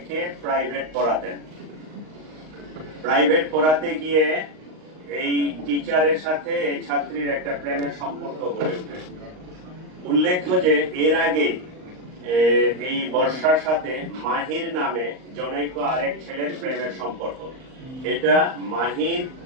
প্রাইভেট পড়াতে গিয়ে এই টিচারের সাথে এই ছাত্রীর একটা প্রেমের সম্পর্ক গড়ে ওঠে। উল্লেখ্য যে এর আগে এই বর্ষার সাথে মাহির নামে জনৈক আরেক ছেলের প্রেমের সম্পর্ক। এটা মাহির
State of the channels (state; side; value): late; left; 38 ms